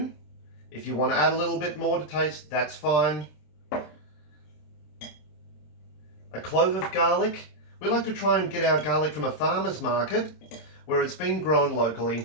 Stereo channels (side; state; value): right; late; 26 ms